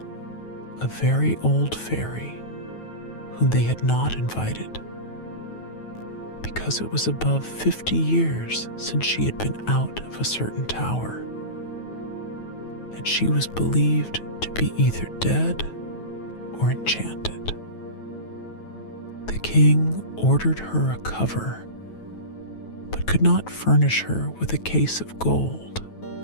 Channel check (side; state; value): right; late; 9.2 ms